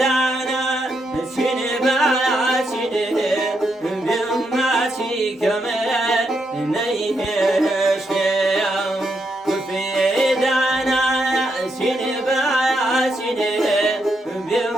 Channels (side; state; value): both; normal; correlation 0.80